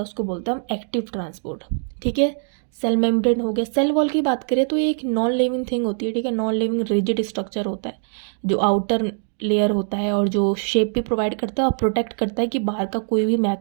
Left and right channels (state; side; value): silent; left; 64 dB below the other